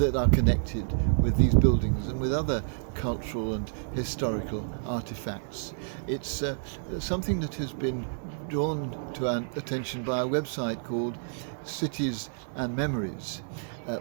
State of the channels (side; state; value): left; silent; 58 dB below the other